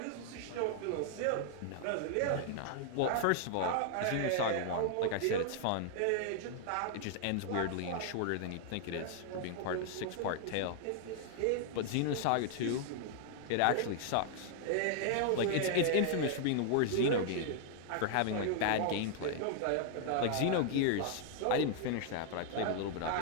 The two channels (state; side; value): different; both; correlation 0.00